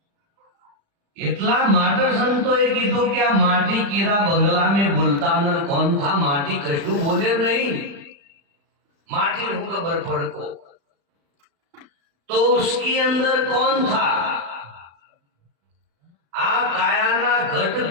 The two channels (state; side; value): late; left; 35 ms